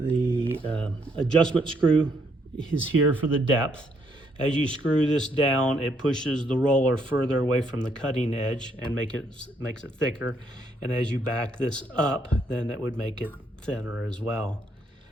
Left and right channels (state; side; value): normal; both; correlation 0.71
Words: adjustment screw is here for the depth. As you screw this down, it pushes the roller further away from the cutting edge and makes it thicker. And as you back this up, then it would make it thinner as well.